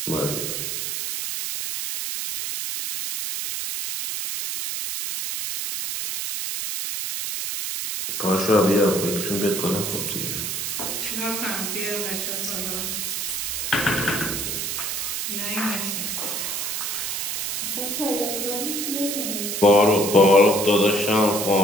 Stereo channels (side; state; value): right; noise; hiss, 3 dB below the sound